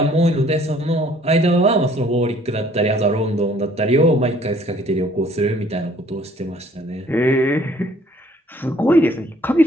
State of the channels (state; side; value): normal; both; correlation 0.58